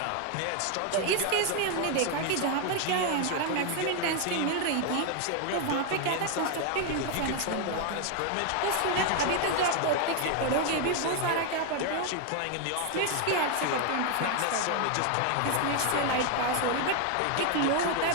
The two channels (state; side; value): different; both; correlation 0.01